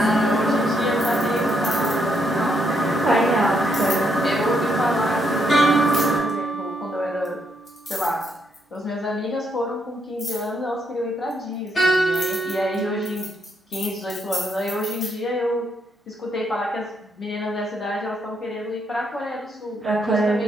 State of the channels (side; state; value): both; normal; correlation 0.76